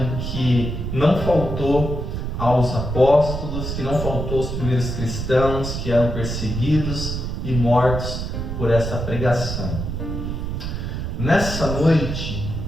que não faltou aos apóstolos, que não faltou aos primeiros cristãos que eram perseguidos e mortos por essa pregação. Nessa noite,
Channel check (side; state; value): right; noise; rumble, 4 dB below the sound